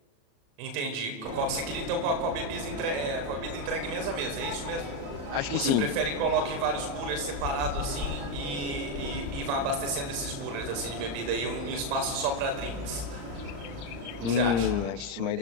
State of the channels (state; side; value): late; left; 36 ms